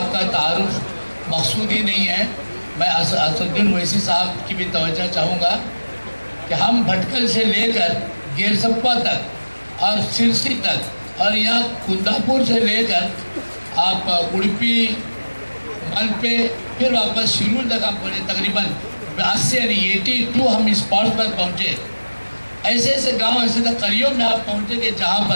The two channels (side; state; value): both; inverted; correlation -1.00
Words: کا تعارف مقصود ہی نہیں ہے۔ میں اسد الدین اویسی صاحب کی بھی توجہ چاہوں گا کہ ہم بھٹکل سے لے کر گیر سپا تک اور سرسی تک اور یہاں کنداپور سے لے کر آپ اڑپی ملپے پھر واپس شیرول تک ہم پہنچے، تقریباً 80 یعنی 82 ہم اسپاٹس پر پہنچے۔ ایسے ایسے گاؤں، ایسے ایسے قریوں میں آپ پہنچے کہ جہاں